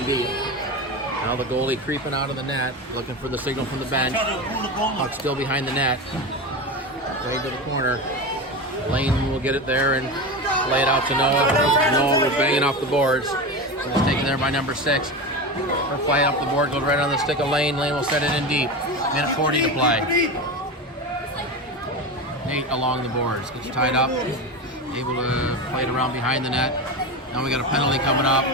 deep. Now the goalie creeping out of the net, looking for the signal from the bench. Puck still behind the net. Played to the corner. Lane will get it there and lay it out to Noah. Noah will bang it off the boards. And it's taken there by number 6. They'll fly it up the board, goes right on the stick of Lane. Lane will set it in deep. Minute 40 to play. Nate along the boards. Gets tied up. Able to play it around behind the net. Now we got a penalty coming up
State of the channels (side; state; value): both; normal; correlation 0.23